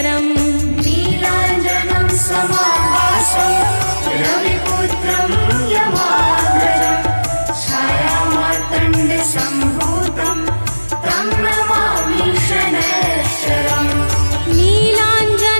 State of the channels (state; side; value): inverted; both; correlation -1.00